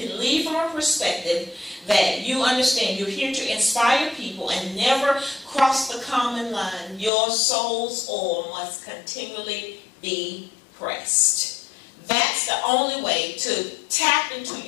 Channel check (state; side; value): drops out; right; at 7.1 s